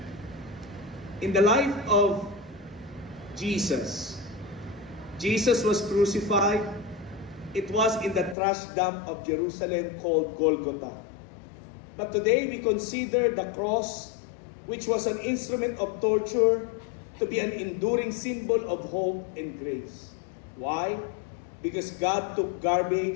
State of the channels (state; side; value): drops out; right; at 8.3 s